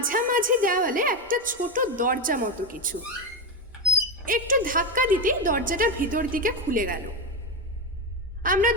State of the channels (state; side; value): normal; both; correlation 0.11